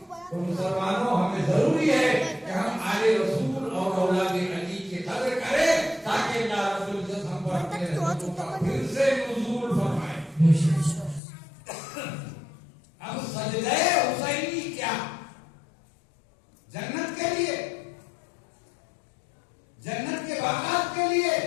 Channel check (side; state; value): right; drops out; at 11.2 s